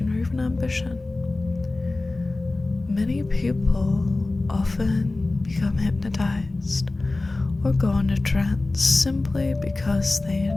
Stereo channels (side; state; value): right; quieter; 3.1 dB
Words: or even ambition. Many people often become hypnotized or go into trance simply because they